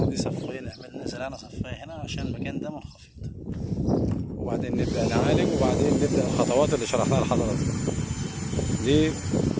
دي صفين زرعنا صفين هنا عشان المكان ده منخفض، وبعدين نبدأ نعالج، وبعدين نبدأ الخطوات اللي شرحناها لحضراتكم دي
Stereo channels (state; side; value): identical; both; correlation 1.00